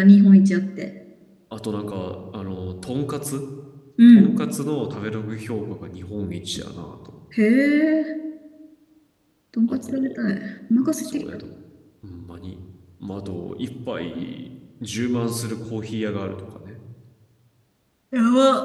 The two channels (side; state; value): both; identical; correlation 1.00